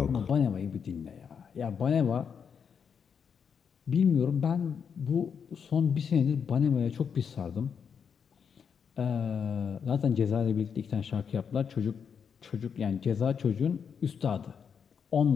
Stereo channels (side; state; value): right; quieter; 6.9 dB